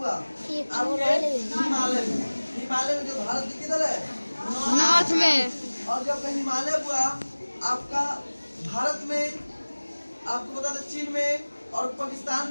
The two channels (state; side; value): inverted; both; correlation -1.00